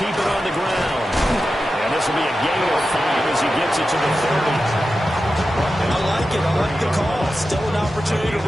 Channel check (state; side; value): normal; both; correlation 0.92